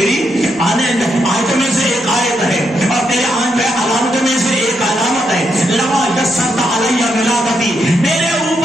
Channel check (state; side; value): normal; both; correlation 0.80